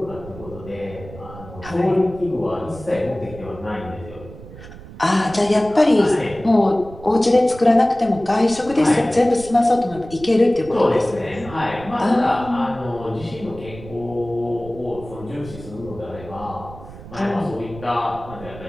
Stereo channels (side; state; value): right; noise; rumble, 16 dB below the sound